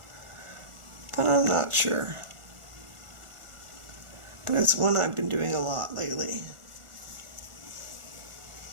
but I'm not sure. But it's one I've been doing a lot lately.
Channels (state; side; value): late; left; 1.4 ms